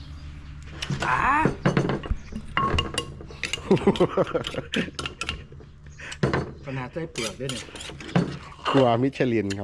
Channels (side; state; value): both; identical; correlation 1.00